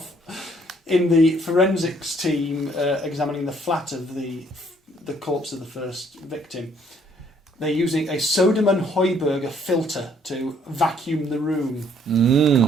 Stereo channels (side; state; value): both; normal; correlation 0.64